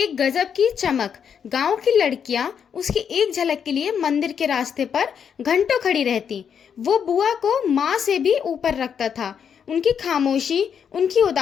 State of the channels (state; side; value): quieter; right; 7.5 dB